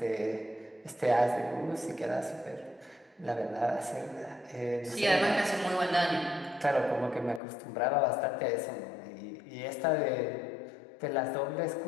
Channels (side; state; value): right; drops out; at 7.4 s